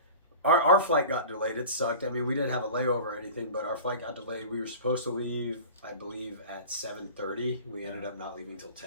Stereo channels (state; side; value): inverted; both; correlation -0.37